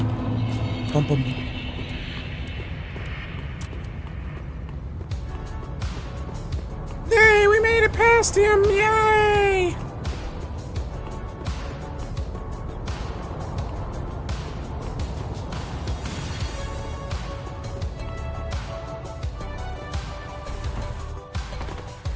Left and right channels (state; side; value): identical; both; correlation 1.00